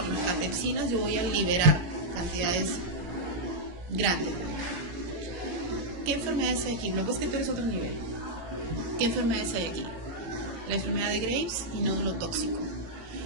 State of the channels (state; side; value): late; left; 17 ms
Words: las catepsinas, yo voy a liberar cantidades grandes. ¿Qué enfermedades hay aquí? Luego es que tú eres otro nivel. ¿Qué enfermedades hay aquí? La enfermedad de Graves y nódulo tóxico.